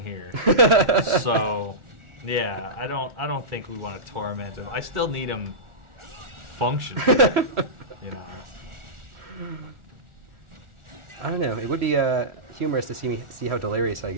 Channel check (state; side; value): late; left; 1.4 ms